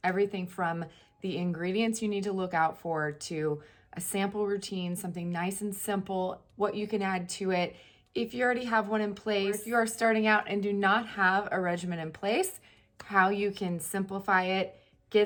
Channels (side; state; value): both; identical; correlation 1.00